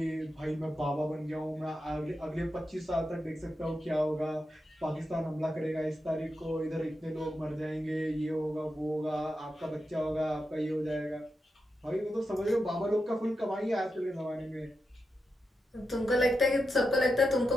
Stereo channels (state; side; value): normal; both; correlation 0.88